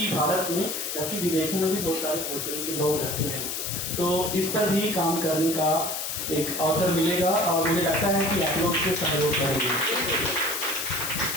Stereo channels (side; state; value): left; noise; hiss, 3 dB below the sound